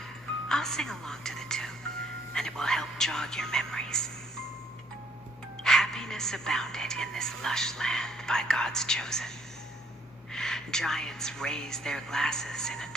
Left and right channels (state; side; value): normal; both; correlation 0.65